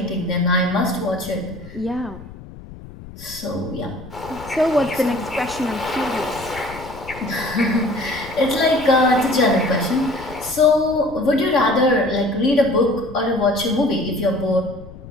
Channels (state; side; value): noise; left; rumble, 16 dB below the sound